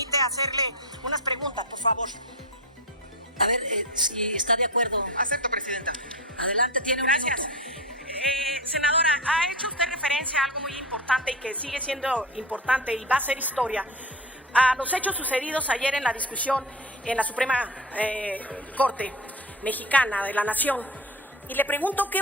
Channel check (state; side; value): normal; both; correlation 0.25